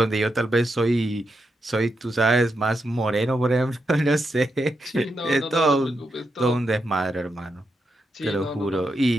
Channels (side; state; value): both; normal; correlation 0.84